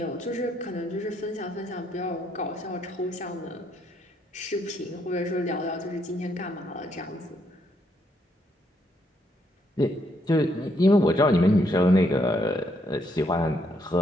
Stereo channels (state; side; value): normal; both; correlation 0.74